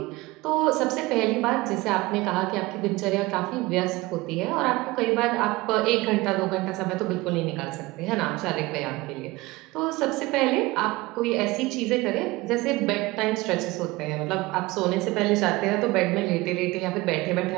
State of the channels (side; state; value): left; quieter; 21.0 dB